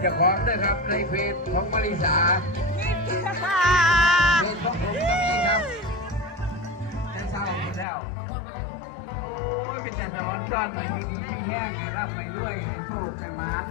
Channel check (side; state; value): right; drops out; at 7.9 s